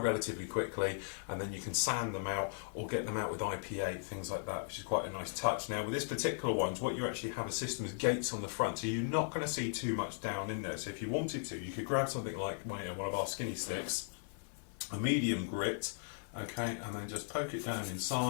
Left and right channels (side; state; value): right; silent; 53 dB below the other